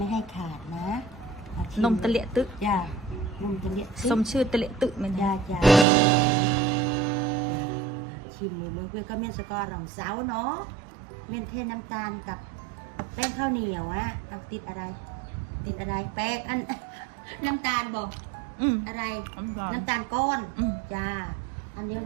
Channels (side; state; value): left; drops out; at 5.9 s